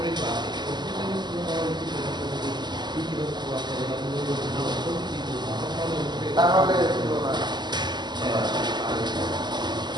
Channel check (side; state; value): left; late; 0.21 ms